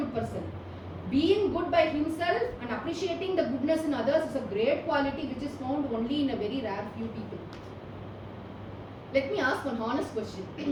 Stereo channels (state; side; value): identical; both; correlation 1.00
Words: person. Being good by himself and appreciating the goodness in others is a great quality which is found only in a very rare few people. Let me ask one honest